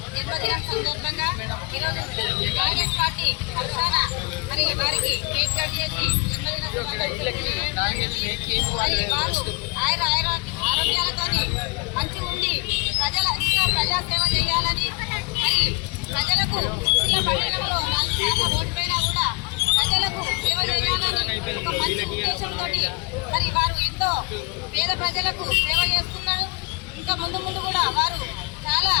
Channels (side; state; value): right; quieter; 31.8 dB